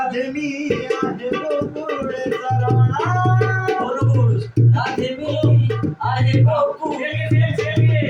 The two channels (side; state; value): both; identical; correlation 1.00